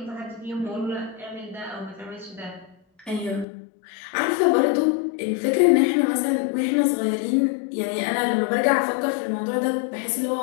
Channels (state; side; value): drops out; right; at 3.5 s